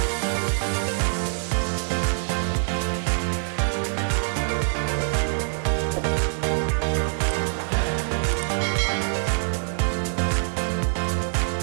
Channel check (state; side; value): silent; left; digital silence